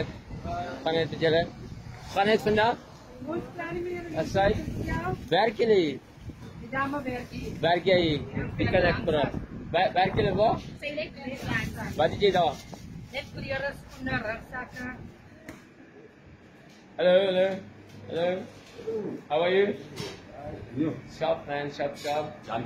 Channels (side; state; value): both; identical; correlation 1.00